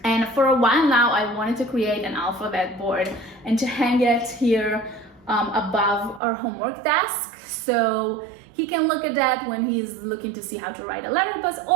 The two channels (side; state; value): left; drops out; at 6.2 s